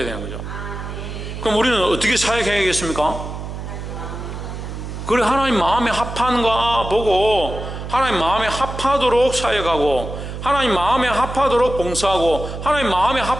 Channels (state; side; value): noise; right; hum, 8 dB below the sound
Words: 되는 거죠. 그럼 우리는 어떻게 사역해야겠습니까? 그래, 하나님 마음에 합한가 보고 하나님 마음에 합하도록 사역하고, 하나님 마음에 합하도록 봉사하고, 하나님 마음에